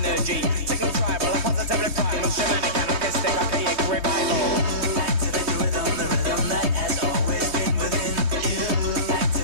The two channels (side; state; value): left; late; 3.1 ms